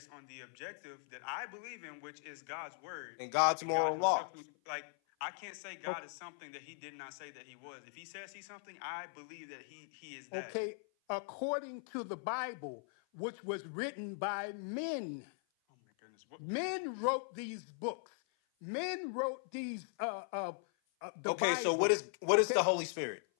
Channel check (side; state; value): right; silent; 52 dB below the other